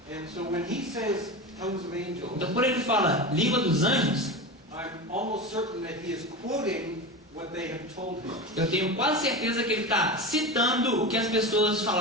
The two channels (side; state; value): both; normal; correlation 0.25